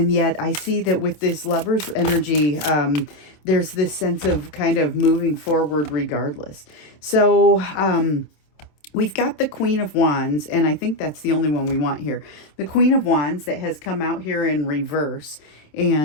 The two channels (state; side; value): late; right; 27 ms